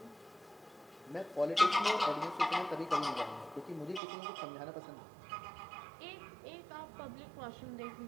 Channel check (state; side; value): drops out; left; at 4.0 s